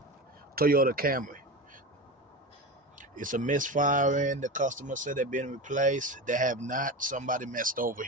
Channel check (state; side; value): normal; both; correlation 0.25